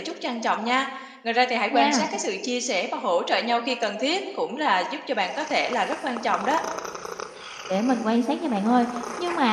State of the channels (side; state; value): both; identical; correlation 1.00